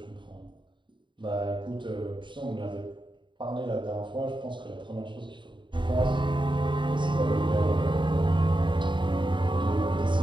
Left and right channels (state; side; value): late; left; 0.23 ms